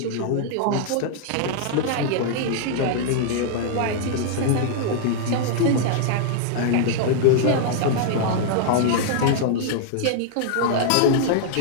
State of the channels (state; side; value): different; both; correlation -0.01